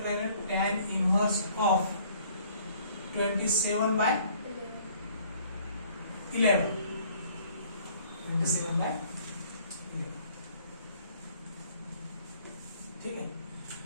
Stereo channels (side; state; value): both; inverted; correlation -0.59